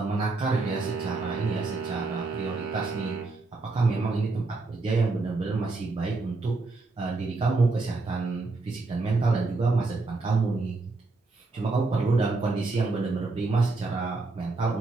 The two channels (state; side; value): quieter; left; 3.6 dB